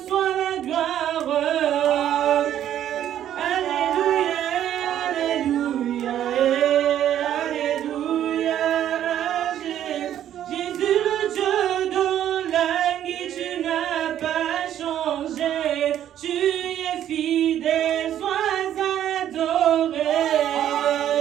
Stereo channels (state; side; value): quieter; left; 11.0 dB